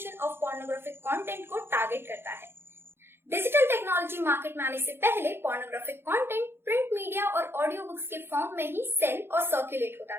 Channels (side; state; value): left; late; 0.11 ms